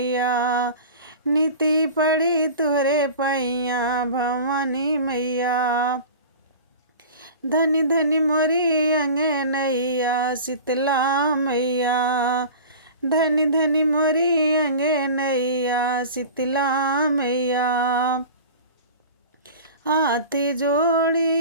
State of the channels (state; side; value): inverted; both; correlation -0.37